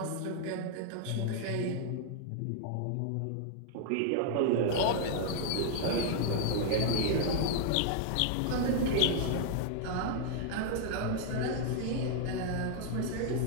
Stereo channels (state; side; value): different; both; correlation 0.00